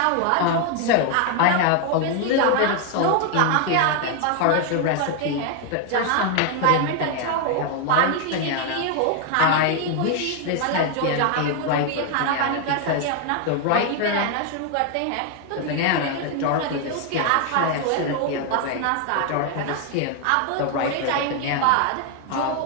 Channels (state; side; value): different; both; correlation 0.01